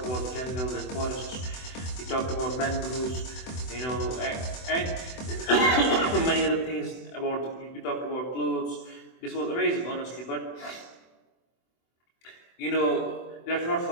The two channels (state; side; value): late; right; 24 ms